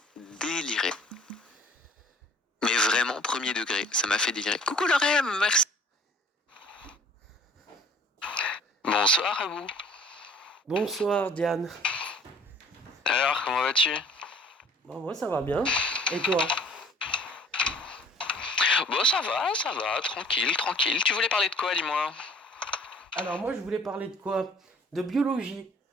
délirer. Mais vraiment, premier degré, ça m'a fait délirer. Coucou Lorem, merci. Bonsoir à vous. Bonsoir Diane. Alors, comment vas-tu? Bon, moi ça va bien. Et toi? Bon, ça va, tranquille. Tu voulais parler de quoi, dis-moi? Alors moi je voulais parler de quoi? De biologie.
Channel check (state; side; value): normal; both; correlation 0.53